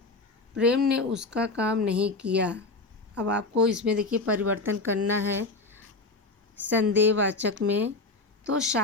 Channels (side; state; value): right; quieter; 3.4 dB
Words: प्रेम ने उसका काम नहीं किया। अब आपको इसमें देखिए परिवर्तन करना है संदेहवाचक में, तो